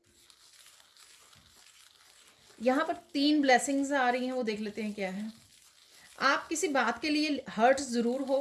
यहाँ पर 3 ब्लेसिंग्स आ रही हैं, वो देख लेते हैं क्या है। आप किसी बात के लिए हर्ट ज़रूर हो,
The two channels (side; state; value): both; identical; correlation 1.00